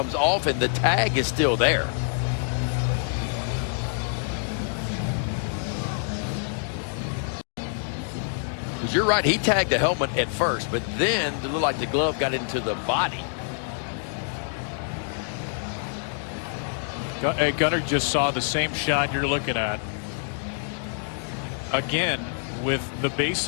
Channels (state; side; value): silent; right; digital silence